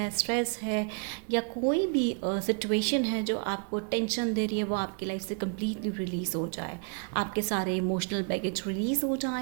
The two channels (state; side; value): quieter; left; 38.7 dB